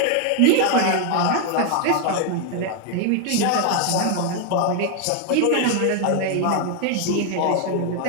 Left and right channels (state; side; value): different; both; correlation 0.00